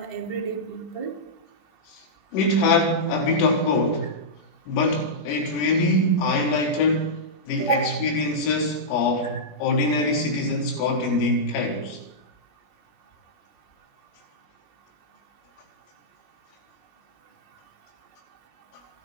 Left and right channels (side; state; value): right; late; 20 ms